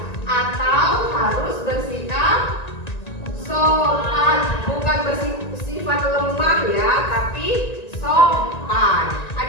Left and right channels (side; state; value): right; late; 1.9 ms